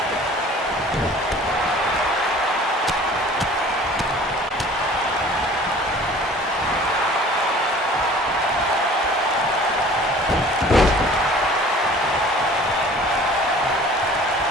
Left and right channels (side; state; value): both; normal; correlation 0.47